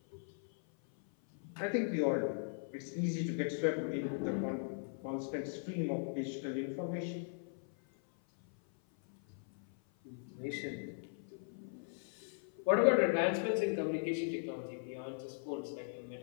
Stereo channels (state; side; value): silent; right; 52 dB below the other